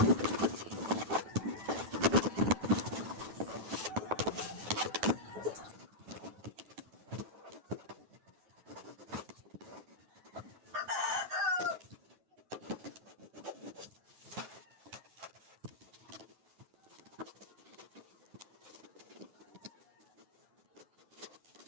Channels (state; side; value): late; left; 9.3 ms